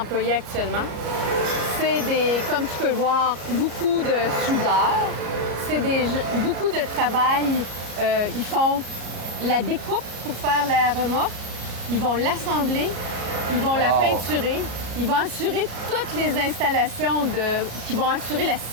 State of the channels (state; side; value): late; left; 34 ms